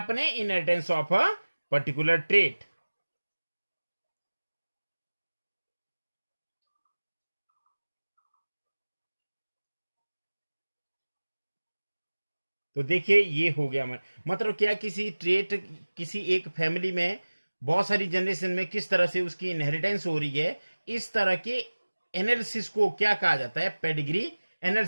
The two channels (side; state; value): both; inverted; correlation -1.00